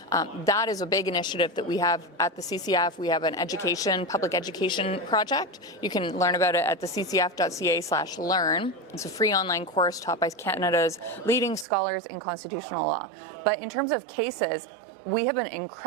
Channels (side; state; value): left; drops out; at 11.7 s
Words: that is a big initiative that we have at the CCF. We have an public education project. You can learn about it at the ccf.ca/learn. It's a free online course taught by Canada's leading scholars in constitutional law. But in terms of cases, we have been